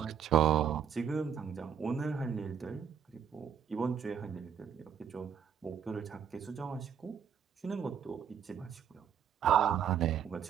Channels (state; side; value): quieter; left; 8.1 dB